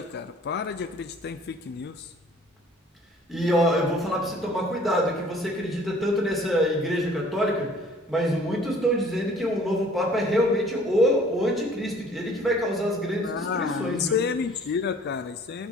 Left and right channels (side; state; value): both; normal; correlation 0.54